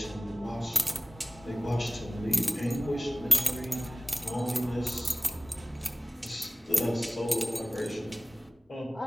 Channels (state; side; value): normal; both; correlation 0.98